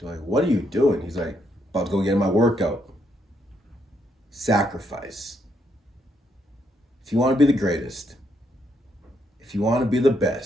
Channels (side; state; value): both; normal; correlation 0.75